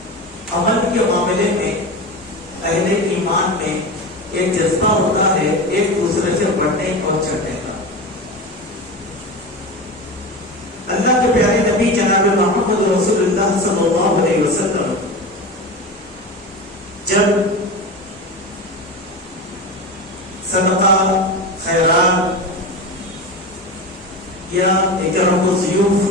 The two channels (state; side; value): normal; both; correlation 0.25